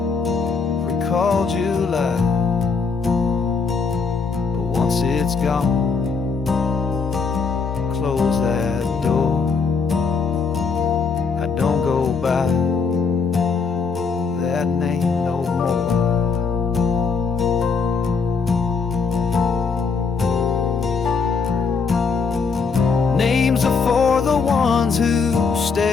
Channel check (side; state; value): right; quieter; 5.1 dB